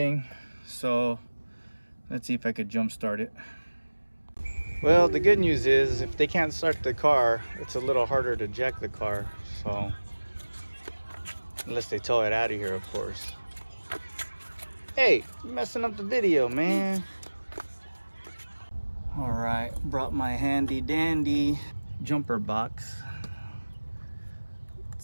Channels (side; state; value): both; inverted; correlation -1.00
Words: so let's see if I could jump start it. Well, the good news is if they can't start the car, it's a little harder to jack the car. So, unless they tow it out of here, of course. Hey, you're messing up the video, man. All right, brought my handy dandy jumper box.